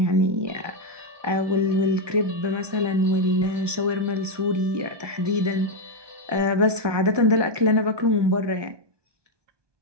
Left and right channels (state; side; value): late; left; 1.2 ms